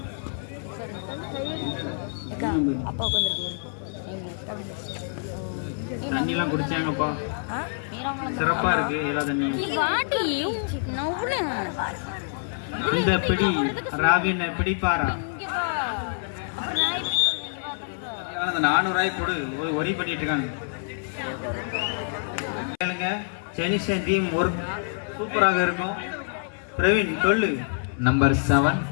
தண்ணிலாம் குடிச்சாங்கப்பா. சிறப்பா இருக்கு எல்லா தண்ணியும். இந்த பிடி ராவின் பிடிப்பாரா. அந்த 400 ரூபாய் போடு ஒரி பண்ணிட்டு இருக்காங்க. சைனீஸ் டீம் ஒரு சூப்பராக இருக்கும். பிரவீன் சொல்லு. நம்பர் 7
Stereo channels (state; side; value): silent; right; 61 dB below the other